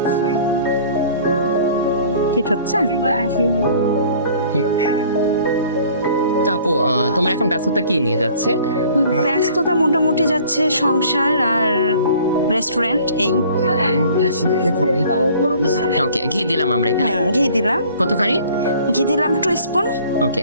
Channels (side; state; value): both; inverted; correlation -0.52